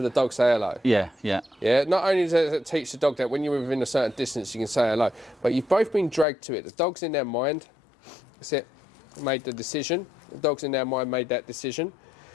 the dog say hello. Yeah. Yeah. Yeah, not only does it teach the dog that when you're within a certain distance you can say hello, but you've both been dragged to it. The dog's in their mind, that's it, made the decision. The dog's in their mind made that decision.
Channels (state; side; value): drops out; right; at 6.2 s